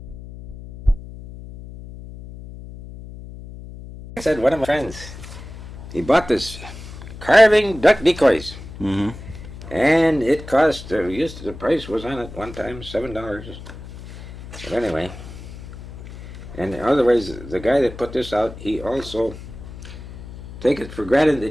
I said, one of my friends, he bought this carving duck decoys, Mm-hmm. and it cost, the price was on it one time, $7. But anyway, and otherwise, the guy that put this out, he also take it for granted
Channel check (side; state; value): left; noise; hum, 14 dB below the sound